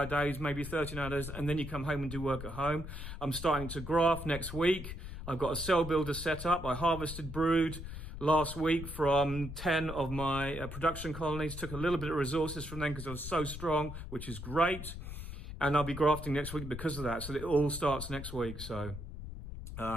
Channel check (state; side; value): noise; left; rumble, 9 dB below the sound